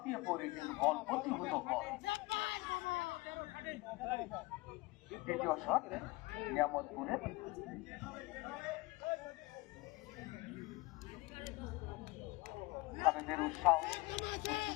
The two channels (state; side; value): quieter; right; 22.8 dB